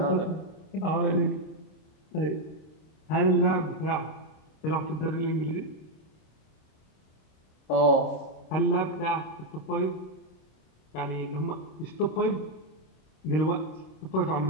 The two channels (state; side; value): late; right; 26 ms